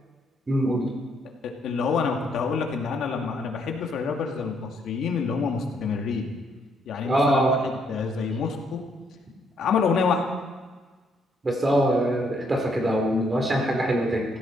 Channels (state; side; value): normal; both; correlation 0.71